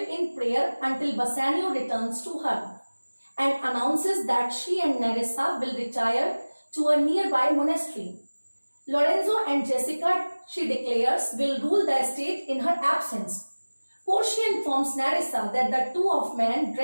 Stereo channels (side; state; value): both; inverted; correlation -1.00